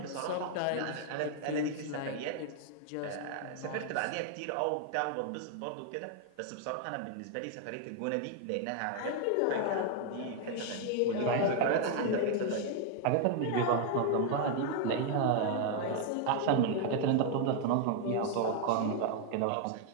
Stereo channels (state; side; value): different; both; correlation 0.00